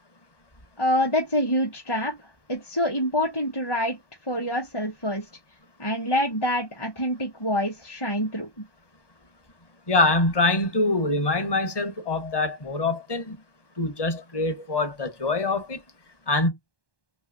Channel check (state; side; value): late; right; 1.2 ms